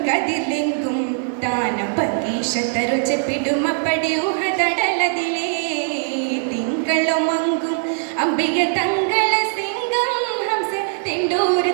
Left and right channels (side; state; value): left; silent; digital silence